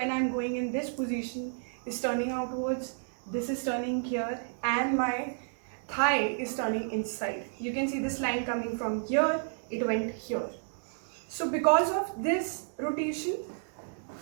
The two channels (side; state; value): left; silent; digital silence